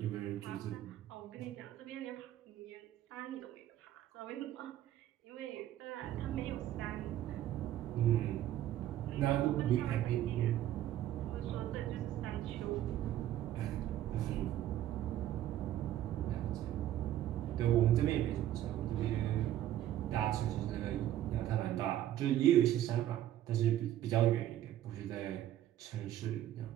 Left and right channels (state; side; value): quieter; left; 12.6 dB